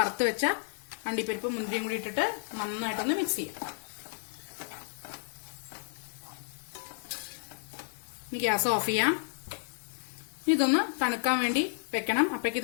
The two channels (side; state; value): right; silent; digital silence